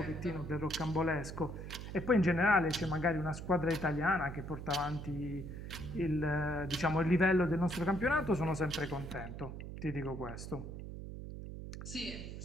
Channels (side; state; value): right; noise; hum, 9 dB below the sound